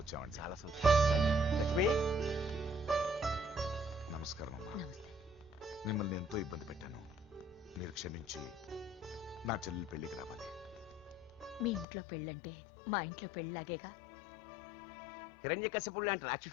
చాలా సంతోషం. లక్ష్మి, నమస్కారం అమ్మా. మిమ్మల్ని ఎంతో ఇబ్బంది పెట్టాను. మీరు క్షమించి నా చెల్లెలి పెళ్లికి రావాలి. మీ ఇంట్లో పెళ్ళంటే మా ఇంట్లో పెళ్ళలాగేగా. హిరణ్యకశిపుడు లాంటి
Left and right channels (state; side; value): drops out; right; at 11.9 s